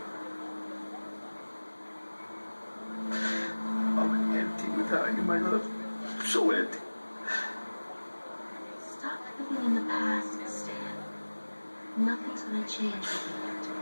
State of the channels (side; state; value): both; inverted; correlation -1.00